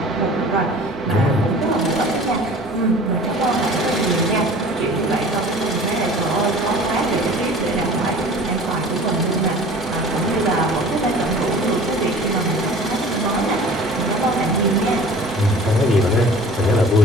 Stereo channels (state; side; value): normal; both; correlation 0.44